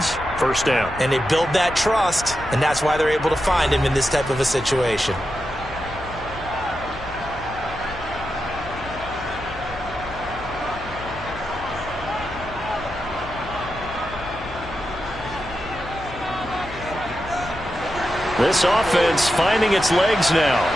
First down. And they build that trust, and that's why they're able to find him in this type of a situation. This offense finding its legs now.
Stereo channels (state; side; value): noise; left; hum, 15 dB below the sound